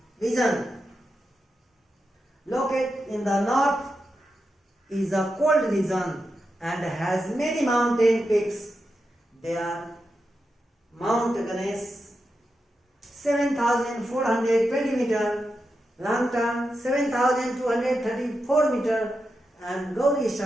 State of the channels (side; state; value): both; normal; correlation 0.88